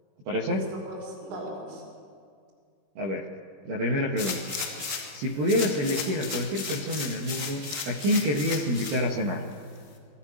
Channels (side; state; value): left; late; 21 ms